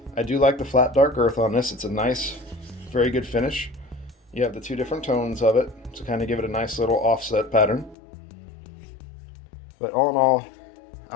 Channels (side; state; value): right; drops out; at 8.0 s